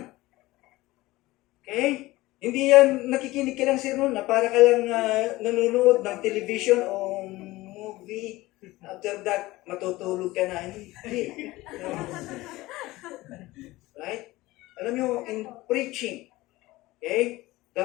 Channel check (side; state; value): right; quieter; 19.0 dB